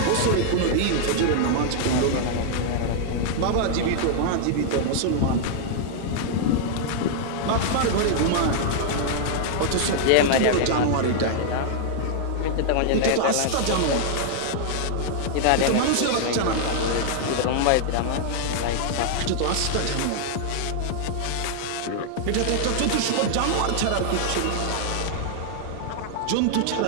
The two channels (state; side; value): different; both; correlation -0.01